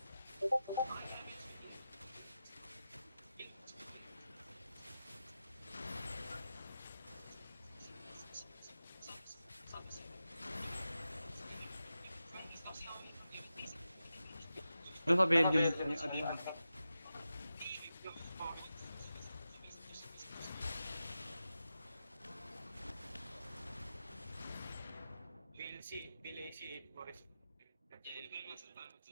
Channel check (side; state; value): both; inverted; correlation -0.91